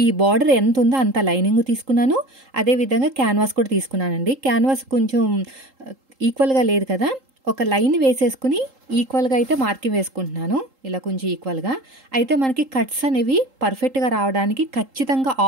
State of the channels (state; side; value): late; left; 3.8 ms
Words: ఈ బార్డర్ ఎంత ఉందో అంత లైనింగ్ తీసుకున్నాను. అదేవిధంగా క్యాన్వాస్ కూడా తీసుకున్నానండి. క్యాన్వాస్ కొంచెం ఈక్వల్గా లేదు కదా, ఒక లైన్ వేసేసుకుని ఈక్వల్గా అయితే మార్కింగ్ వేసుకుంటున్నాను. ఇలా కొంచెం ఈక్వల్గా అయితే మనకి కట్స్ అనేవి పర్ఫెక్ట్గా రావడానికి ఖచ్చితంగా